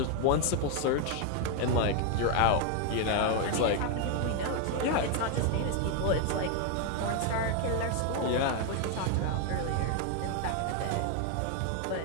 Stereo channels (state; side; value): different; both; correlation 0.01